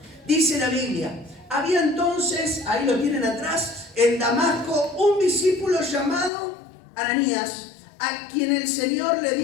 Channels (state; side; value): drops out; right; at 6.3 s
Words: Dice la Biblia, había entonces, ahí lo tienen atrás, en Damasco, un discípulo llamado Ananías, a quien el Señor le